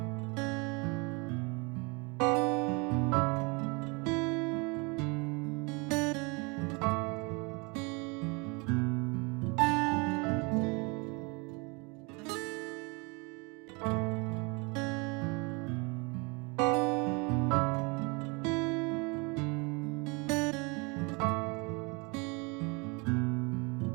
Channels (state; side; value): quieter; left; 29.6 dB